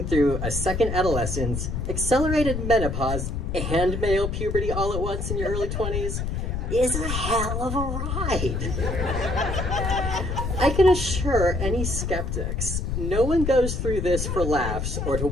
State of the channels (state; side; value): noise; left; rumble, 2 dB below the sound